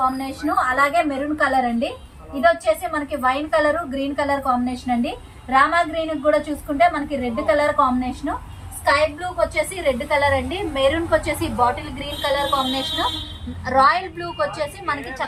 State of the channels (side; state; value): both; identical; correlation 1.00